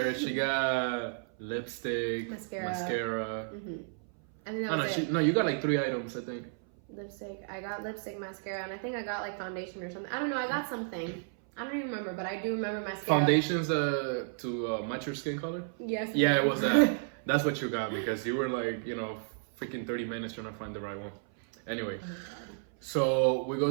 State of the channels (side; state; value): left; silent; 56 dB below the other